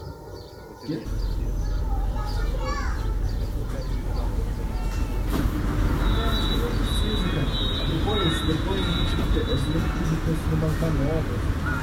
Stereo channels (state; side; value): identical; both; correlation 1.00